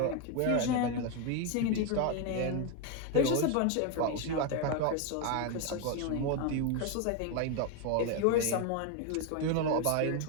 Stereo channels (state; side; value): different; both; correlation 0.01